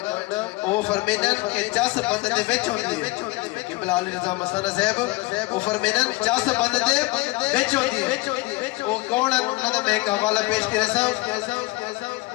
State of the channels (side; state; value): right; quieter; 21.8 dB